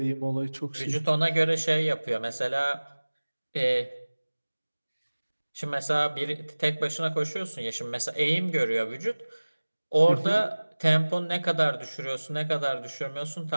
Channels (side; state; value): both; inverted; correlation -1.00